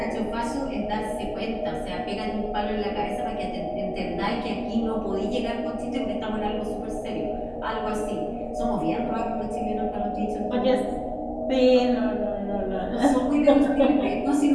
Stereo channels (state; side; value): identical; both; correlation 1.00